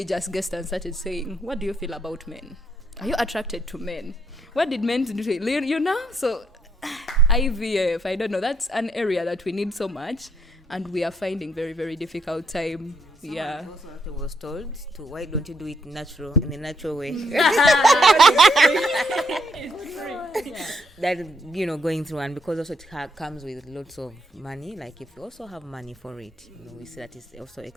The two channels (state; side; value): normal; both; correlation 0.74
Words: just guessed and started saying, what do you feel about men? Are you attracted to men? What did men do to you? So IVF, I don't know, that's an area that we need so much, and we are finding very, very difficult time. Yeah. Also was told to, why don't you do it in a natural way? That going through, and because also it comes with lots of money. Like if you also have money for it, we see that it's also